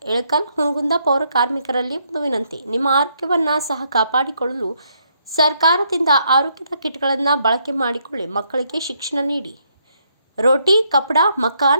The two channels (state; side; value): inverted; both; correlation -0.73